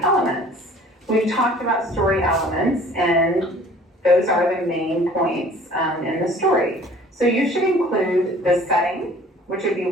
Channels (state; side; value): normal; both; correlation 0.50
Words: We've talked about story elements, and those are the main points in the story. So you should include the setting, which would be